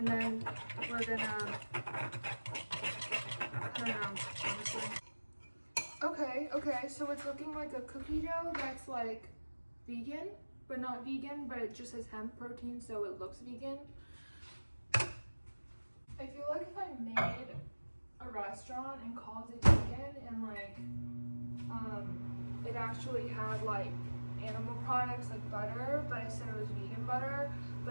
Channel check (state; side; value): inverted; both; correlation -1.00